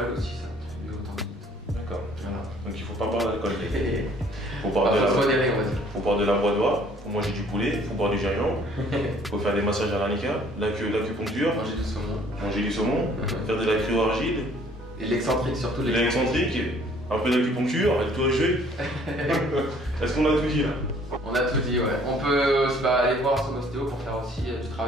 aussi, ça contribue au tendinite. D'accord. Voilà. Donc il faut pas boire d'alcool. Faut boire de la badoie, faut manger du poulet, faut boire du gingembre, faut faire des massages à l'arnica, l'acupuncture, manger du saumon, faire de la cryo-argile. Et l'excentrique surtout. L'excentrique, un peu d'acupuncture, et tout jeu. Est-ce qu'on a tout dit là? On a tout dit, ouais. On peut aller voir son ostéo pour faire aussi du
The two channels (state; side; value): normal; both; correlation 0.58